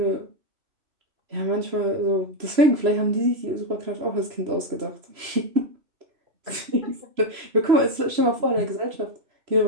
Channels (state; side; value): late; left; 3.0 ms